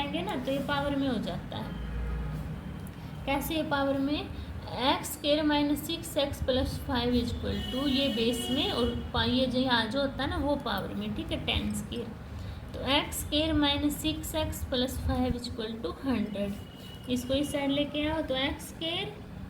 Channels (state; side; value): identical; both; correlation 1.00